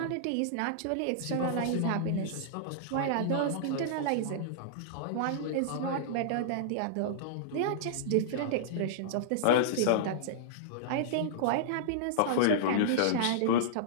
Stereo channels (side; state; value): both; different; correlation -0.02